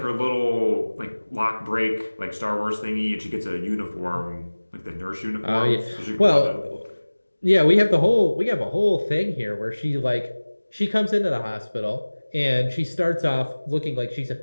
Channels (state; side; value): inverted; both; correlation -1.00